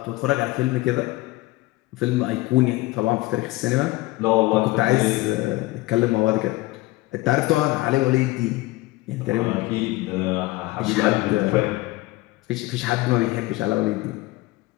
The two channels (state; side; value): quieter; right; 20.0 dB